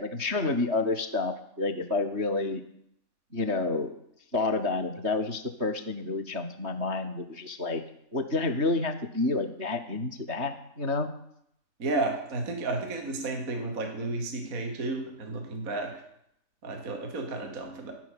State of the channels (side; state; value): left; late; 3.2 ms